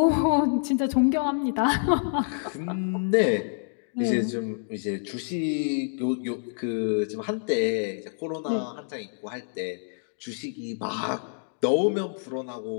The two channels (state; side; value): silent; right; digital silence